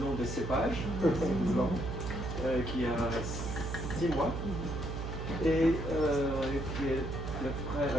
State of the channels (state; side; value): noise; right; hum, 5 dB below the sound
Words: des cépages, qui a 6 mois, et qui est le frère